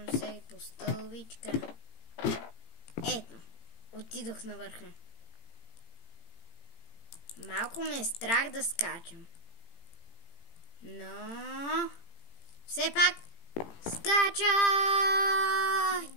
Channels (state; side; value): late; right; 18 ms